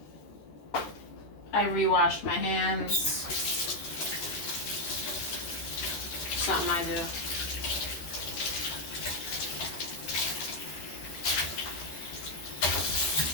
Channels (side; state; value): right; late; 13 ms